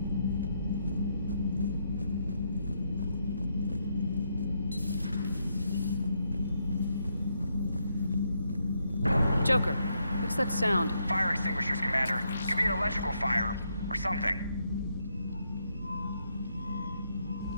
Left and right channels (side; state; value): both; inverted; correlation -0.78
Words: Joker, what's that sound? Fire extinguishers, Commander. Could be an electrical fire, or something.